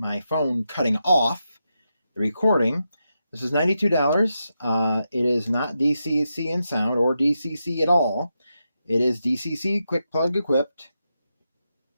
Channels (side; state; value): both; inverted; correlation -0.87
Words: phone cutting off the recording. This is $92. It is not DCC in sound or DCC at all. It is DCC quick plug equipped.